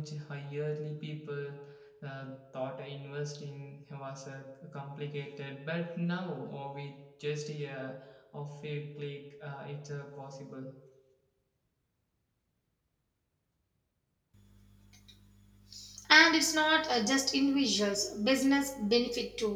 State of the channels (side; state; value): both; identical; correlation 1.00